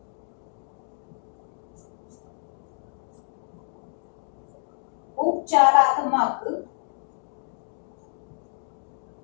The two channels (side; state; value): right; silent; digital silence